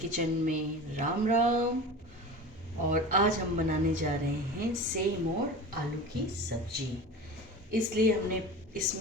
में राम राम। और आज हम बनाने जा रहे हैं सेम और आलू की सब्जी। इसलिए हमने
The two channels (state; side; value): normal; both; correlation 0.33